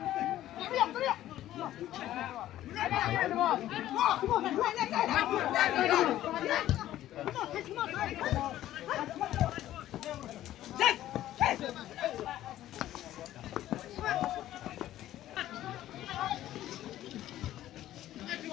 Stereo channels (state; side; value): quieter; right; 13.4 dB